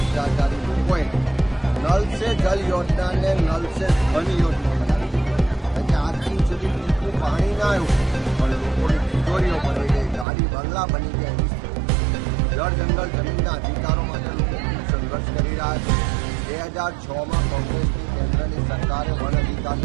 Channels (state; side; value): drops out; left; at 10.2 s